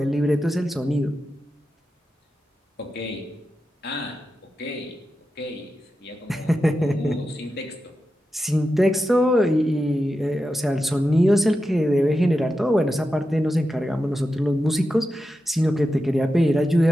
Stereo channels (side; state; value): both; normal; correlation 0.90